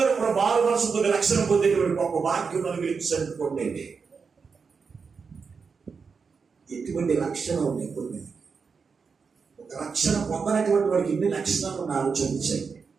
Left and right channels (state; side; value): quieter; left; 5.4 dB